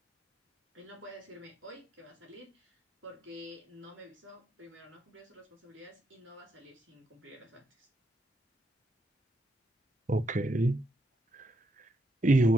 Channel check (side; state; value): both; normal; correlation 0.80